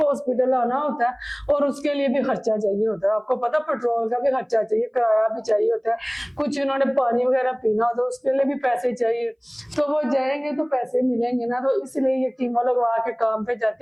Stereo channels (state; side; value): identical; both; correlation 1.00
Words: आना होता है और उसके लिए भी खर्चा चाहिए होता है। आपको पता पेट्रोल का भी खर्चा चाहिए, किराया भी चाहिए होता है, कुछ उन्होंने पानी वगैरह पीना होता है उसके लिए भी पैसे चाहिए। तो वो जाएंगे तो पैसे मिलेंगे ना, तो इसलिए ये कीमो लगवा के काम पे